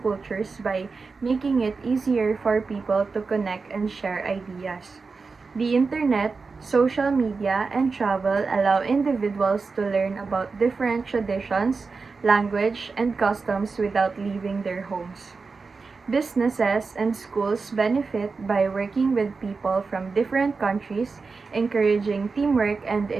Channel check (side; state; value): left; quieter; 4.5 dB